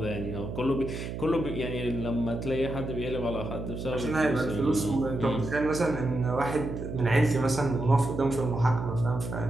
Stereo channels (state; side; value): noise; right; hum, 6 dB below the sound